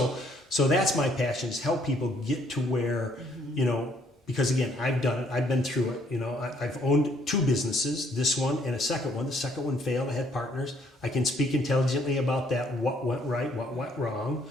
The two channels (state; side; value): normal; both; correlation 0.66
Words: that's my passion, is help people get to where, because again, I've done it. I've been through it. I've owned 2 businesses, this one and a second one. The second one failed. I had partners. I can speak intelligently about that, what went right, what went wrong.